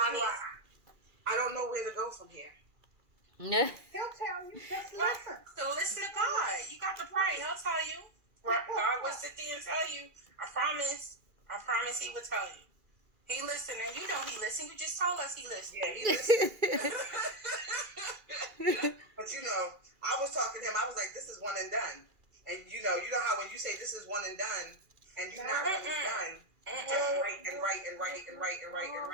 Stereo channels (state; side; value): late; left; 2.4 ms